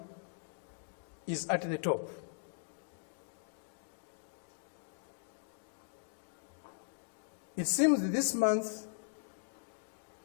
is at the top. It seems that this month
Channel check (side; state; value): right; silent; digital silence